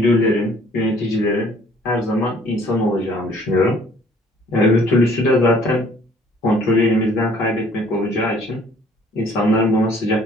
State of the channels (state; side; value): normal; both; correlation 0.57